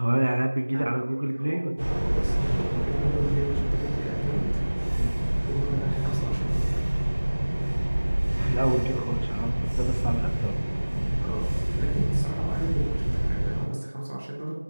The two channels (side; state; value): both; inverted; correlation -1.00